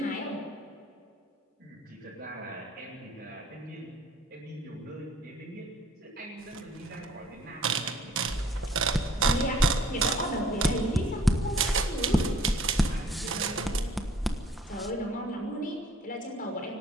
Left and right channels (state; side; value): normal; both; correlation 0.57